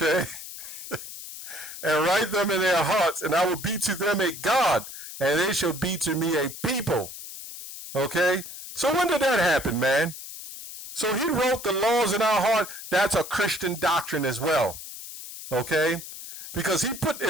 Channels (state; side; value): noise; left; hiss, 12 dB below the sound